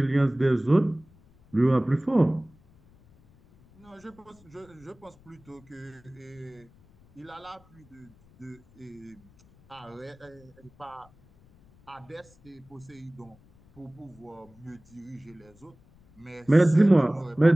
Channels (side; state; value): left; noise; rumble, 28 dB below the sound